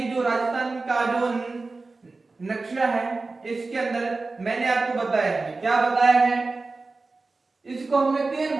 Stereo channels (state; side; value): quieter; left; 3.7 dB